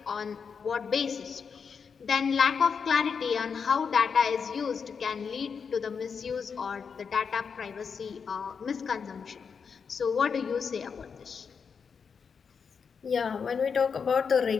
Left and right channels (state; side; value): quieter; right; 6.1 dB